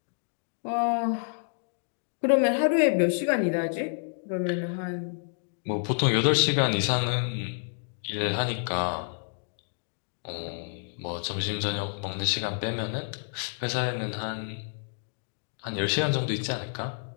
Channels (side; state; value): right; silent; digital silence